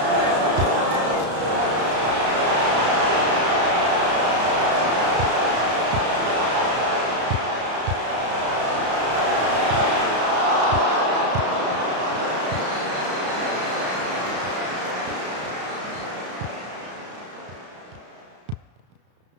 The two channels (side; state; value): left; late; 33 ms